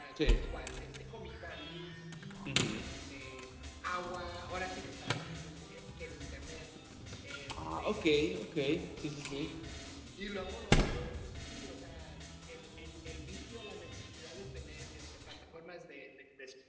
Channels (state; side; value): identical; both; correlation 1.00